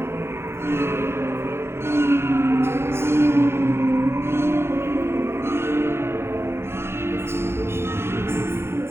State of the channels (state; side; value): late; left; 0.12 ms